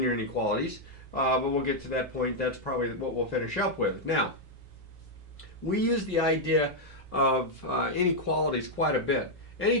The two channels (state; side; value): normal; both; correlation -0.03